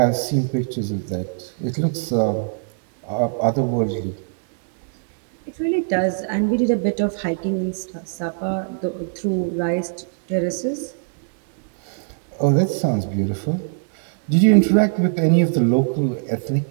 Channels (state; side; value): silent; left; digital silence